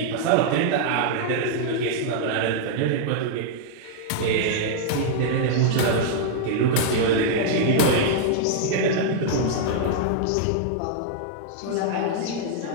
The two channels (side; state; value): both; different; correlation -0.01